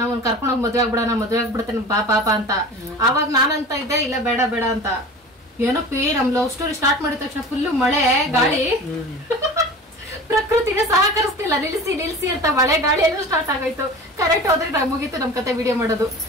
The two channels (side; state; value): both; normal; correlation 0.37